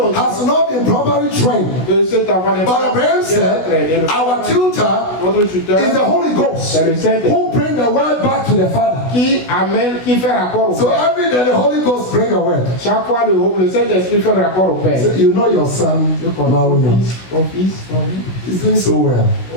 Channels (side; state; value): right; late; 16 ms